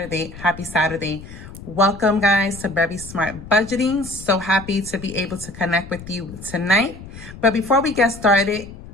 happy Saturday. Welcome guys to Very Smart Budgeting. So happy to be able to connect with you tonight. But before we get started,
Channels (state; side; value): noise; left; rumble, 15 dB below the sound